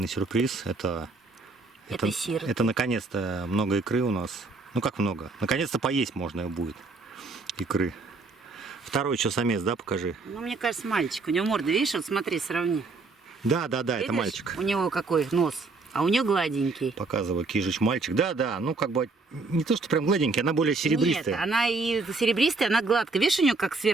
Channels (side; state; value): left; quieter; 3.8 dB